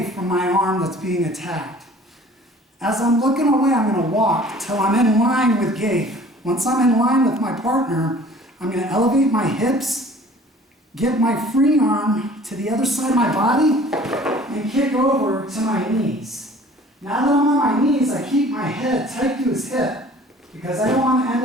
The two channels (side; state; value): both; normal; correlation 0.50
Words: from my arm that's being attacked. As I'm looking away, I'm going to walk till I'm in line with Gabe. Once I'm in line with my partner, I'm going to elevate my hips, get my free arm to the other side of my body, and kick over to my knees. Now that I'm on my knees, I keep my head tight to his hip because I don't want to end